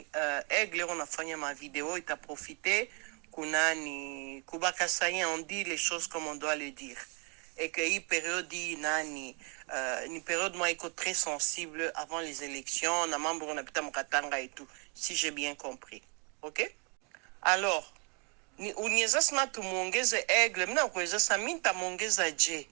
Aigle unafanya ma vidéo ita profiter kunani kubaka sayen on dit les choses comme on doit le dire. Et que hii période nani ni période moi iko très sensible avant les élections na mambo unapita mkatanga et tout, si j'ai bien compris. OK? Alors ni uniweza sema tumuongeze Aigle, mina kuweza sema minta muongeza je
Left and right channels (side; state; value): left; quieter; 34.7 dB